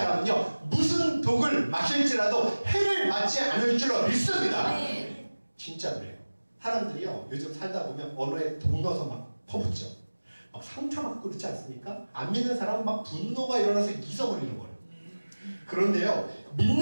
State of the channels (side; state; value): both; inverted; correlation -1.00